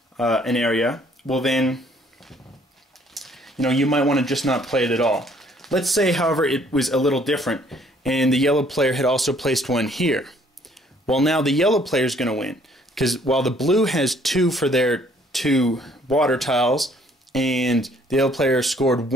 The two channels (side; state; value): both; normal; correlation 0.61